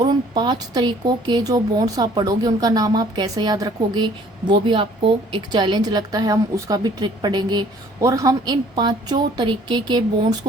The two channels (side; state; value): both; normal; correlation 0.56